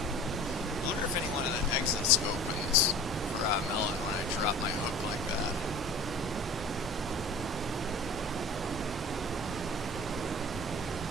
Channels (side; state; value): left; noise; hum, 22 dB below the sound